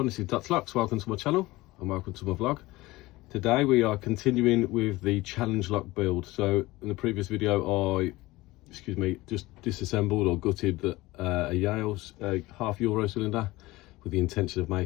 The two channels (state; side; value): quieter; right; 19.7 dB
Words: this is Dutch Lux. Welcome to my channel and welcome to my vlog. Today we are continuing with the challenge lock build. So in the previous video I just disassembled or gutted a Yale's half euro cylinder with the intention of